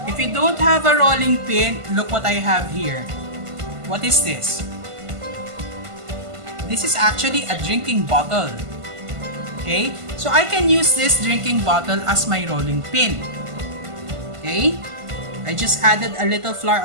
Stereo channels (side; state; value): left; late; 1.5 ms